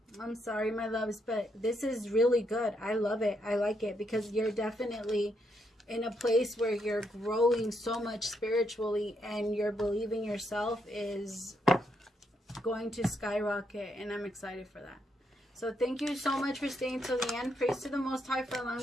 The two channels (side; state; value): both; normal; correlation 0.78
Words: I'm sorry, my loves, but this is really good. I love it. I like it because you're definitely in a place where you're growing so much spiritually, and your believing yourself is going to skyrocket, and I'm excited for that. So thank you so much for staying till the end. Praise to the Most High for